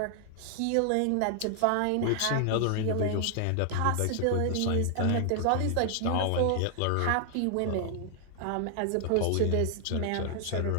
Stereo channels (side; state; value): both; different; correlation 0.00